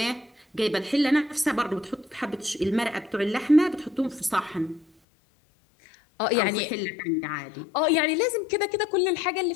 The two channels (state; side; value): drops out; right; at 4.9 s